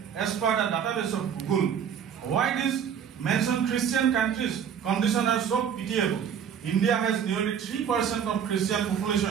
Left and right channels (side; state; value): left; quieter; 8.1 dB